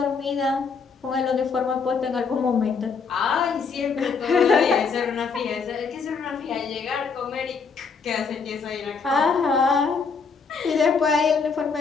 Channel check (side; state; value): right; quieter; 5.2 dB